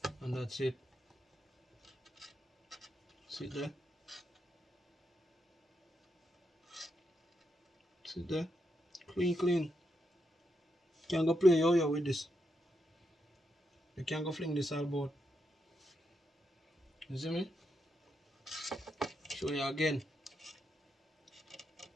And that's it. Sit there. Sit there. Clean, clean. Can't go play yo-yo with this. You can't go fling this all about. You see me? Show you again.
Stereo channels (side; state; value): both; normal; correlation 0.83